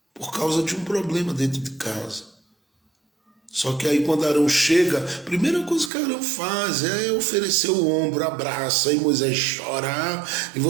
por causa de um problema dentro de casa. Só que aí quando Arão chega, a primeira coisa que Arão faz é oferecer o ombro, abraça, e Moisés chora. E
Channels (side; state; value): left; drops out; at 5.9 s